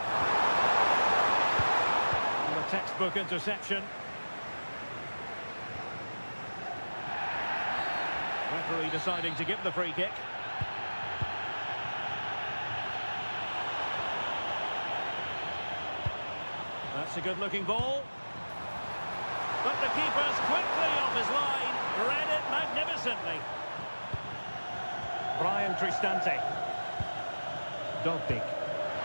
And a textbook interception. Referee deciding to give the free kick. That's a good-looking ball. But the keeper's quickly off his line. Read it magnificently. Brian Cristante. Dogbig.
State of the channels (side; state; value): both; inverted; correlation -1.00